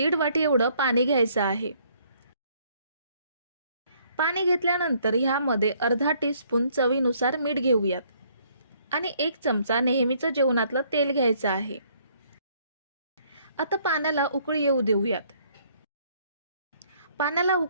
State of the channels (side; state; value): both; inverted; correlation -0.64